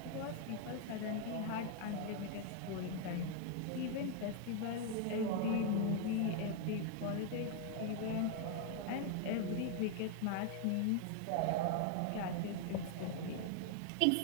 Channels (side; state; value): both; different; correlation 0.01